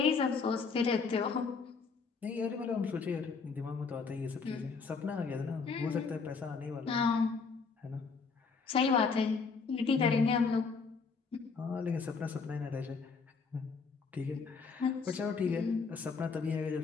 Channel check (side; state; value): right; quieter; 5.0 dB